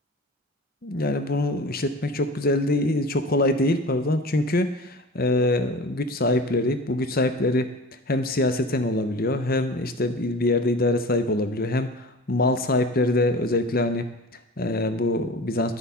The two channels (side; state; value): both; normal; correlation 0.37